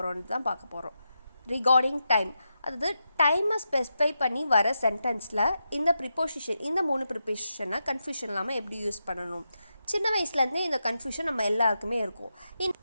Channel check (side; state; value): both; inverted; correlation -0.87